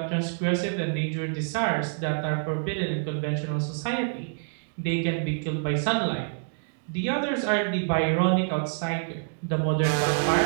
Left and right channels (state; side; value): silent; left; digital silence